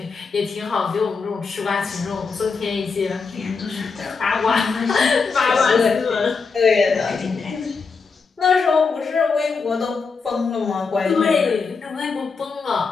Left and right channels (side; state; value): right; quieter; 4.9 dB